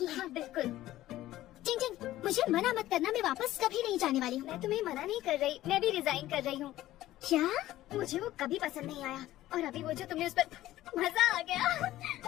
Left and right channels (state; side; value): quieter; right; 15.0 dB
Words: है। हाँ बिल्कुल। चिंग चिंग, मुझे मना मत करना, मैं वापस कभी नहीं जाने वाली हूँ। मैं तुम्हें मना नहीं कर रही, मैं भी रिजाइन कर रही हूँ। क्या? मुझे वो कभी पसंद नहीं आया, और अभी वो जो तुमने उस पर मजा आ गया।